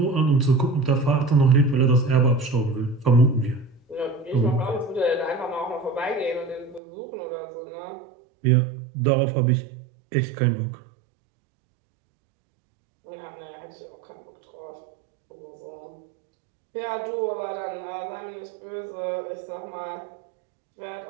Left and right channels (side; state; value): left; drops out; at 6.8 s